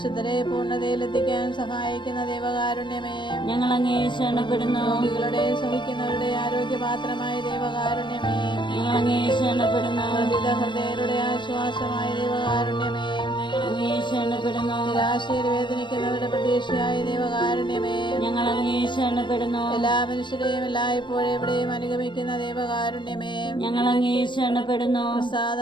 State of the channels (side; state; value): right; late; 0.22 ms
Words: പൂർണ്ണതയിലെത്തിക്കാൻ സഹായിക്കുന്ന ദൈവകാരുണ്യമേ, ഞങ്ങൾ അങ്ങേ ശരണപ്പെടുന്നു. രോഗികളുടെ സഹിക്കുന്നവരുടെ ആരോഗ്യപാത്രമായ ദൈവകാരുണ്യമേ, ഞങ്ങൾ അങ്ങേ ശരണപ്പെടുന്നു. പ്രതിത ഹൃദയരുടെ ആശ്വാസമായ ദൈവകാരുണ്യമേ, ഞങ്ങൾ അങ്ങേ ശരണപ്പെടുന്നു. നിരാശയിൽ വേദനിക്കുന്നവരുടെ പ്രതീക്ഷയായ ദൈവകാരുണ്യമേ, ഞങ്ങൾ അങ്ങേ ശരണപ്പെടുന്നു. എല്ലാ മനുഷ്യരെയും എല്ലായ്പ്പോഴും എവിടെയും അനുഗമിക്കുന്ന ദൈവകാരുണ്യമേ, ഞങ്ങൾ അങ്ങേ ശരണപ്പെടുന്നു.